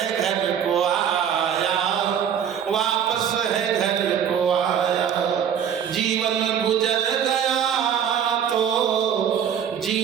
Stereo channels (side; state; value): left; quieter; 8.5 dB